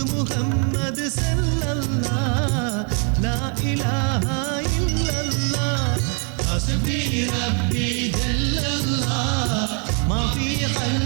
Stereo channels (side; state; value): left; quieter; 39.4 dB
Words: മുഹമ്മദ് സല്ലല്ലാഹ് ലാ ഇലാഹ ഇല്ലല്ലാഹ് ഹസ്ബി റബ്ബി ജല്ലല്ലാഹ് മാ ഫീ